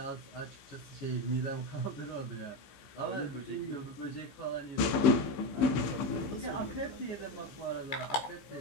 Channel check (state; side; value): late; right; 15 ms